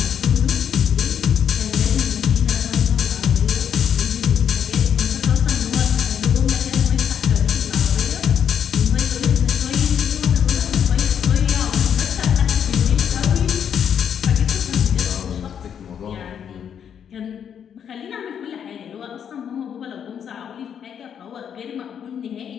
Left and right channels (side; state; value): right; quieter; 8.3 dB